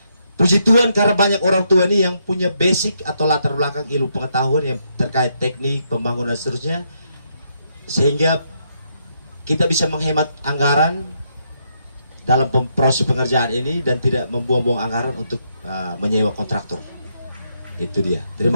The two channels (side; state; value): both; inverted; correlation -0.77